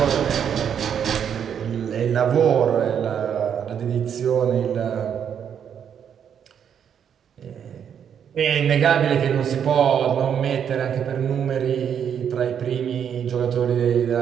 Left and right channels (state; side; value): quieter; left; 8.3 dB